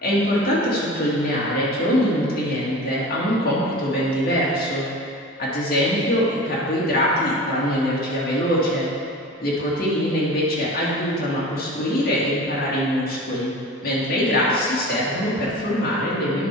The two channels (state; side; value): normal; both; correlation 0.35